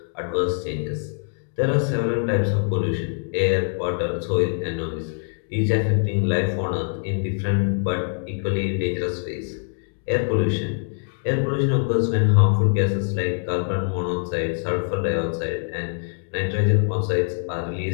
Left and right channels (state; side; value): silent; right; digital silence